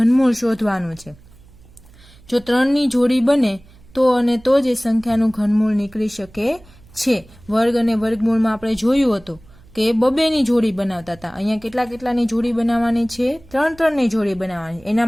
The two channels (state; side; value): noise; right; hum, 25 dB below the sound